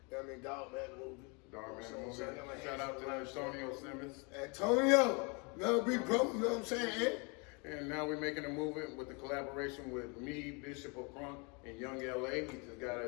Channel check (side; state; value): right; quieter; 32.2 dB